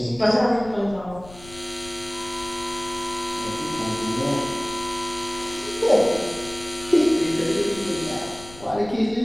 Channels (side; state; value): left; noise; rumble, 18 dB below the sound